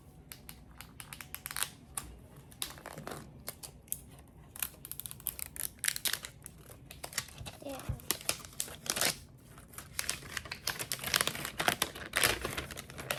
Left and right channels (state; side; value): identical; both; correlation 1.00